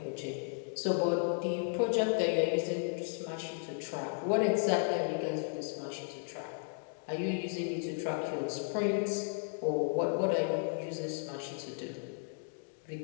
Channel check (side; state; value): right; silent; 55 dB below the other